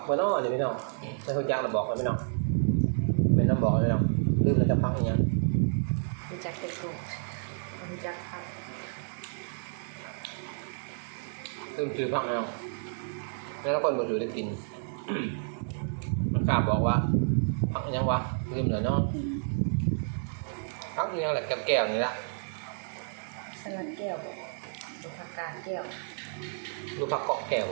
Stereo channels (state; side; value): silent; left; 57 dB below the other